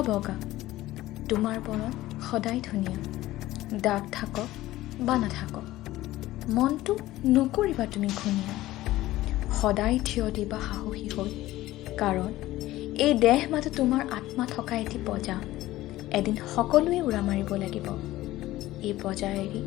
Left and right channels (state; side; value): quieter; right; 16.3 dB